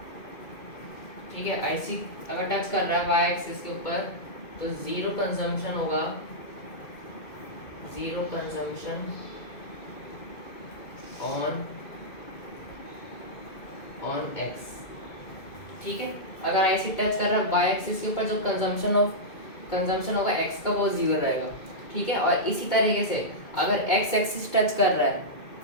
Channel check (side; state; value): right; late; 2.2 ms